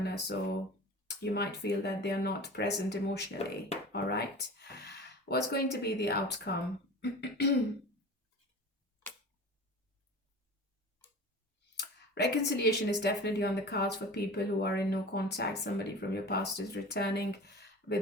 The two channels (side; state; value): both; normal; correlation 0.36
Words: So you might feel that they are not present emotionally. All right. What's going to be the outcome? Reconciliation is definitely on the cards for people who are in no contact. Somebody from your past is returning